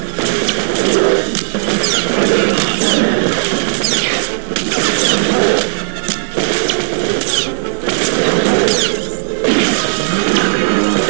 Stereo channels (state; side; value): silent; left; digital silence